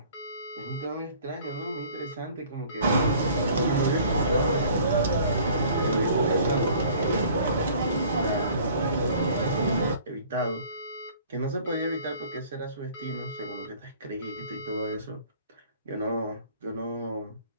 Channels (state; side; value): inverted; both; correlation -0.51